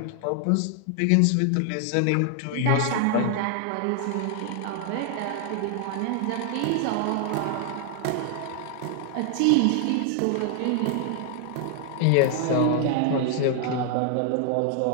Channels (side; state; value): both; different; correlation 0.00